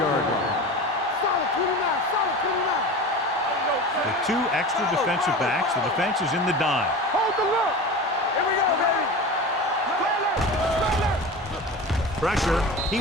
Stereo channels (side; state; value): both; normal; correlation 0.31